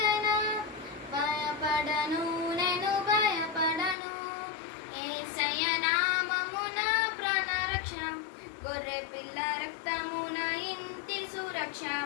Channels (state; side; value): drops out; right; at 4.0 s